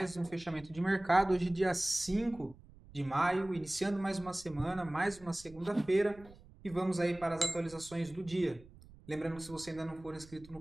um fechamento de mercado, hoje dia 5 de maio, iniciando mais uma semana, mais uma segunda-feira e vamos aí para as atualizações do dia. Lembrando que se você ainda não for inscrito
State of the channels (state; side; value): noise; right; rumble, 22 dB below the sound